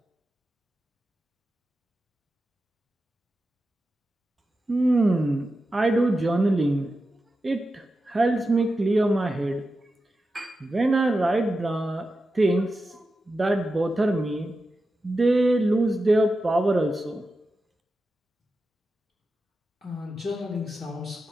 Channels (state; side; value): normal; both; correlation 0.91